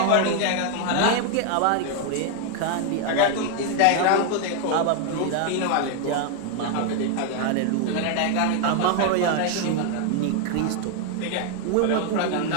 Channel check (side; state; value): both; different; correlation 0.00